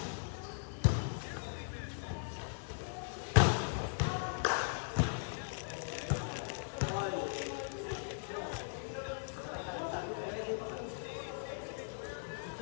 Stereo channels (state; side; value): silent; right; 52 dB below the other